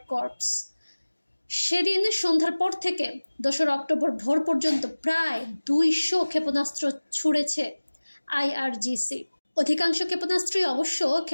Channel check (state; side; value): inverted; both; correlation -1.00